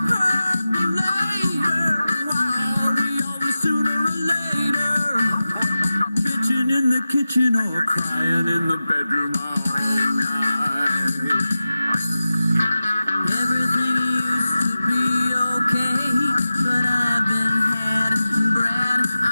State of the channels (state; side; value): inverted; both; correlation -0.95